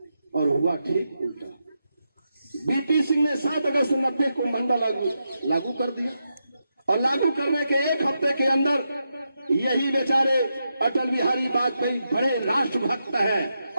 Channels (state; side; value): inverted; both; correlation -0.86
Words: और हुआ ठीक उल्टा। BP सिंह ने 7 अगस्त 90 को मंडल लागू कर दिया और लागू करने के 1 हफ्ते के अंदर यही बेचारे अटल बिहारी वाजपेयी बड़े राष्ट्रभक्त हैं